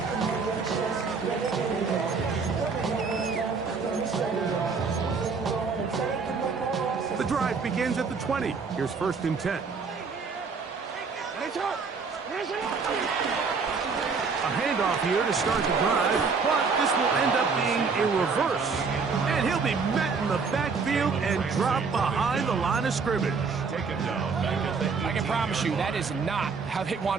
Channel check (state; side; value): quieter; left; 5.0 dB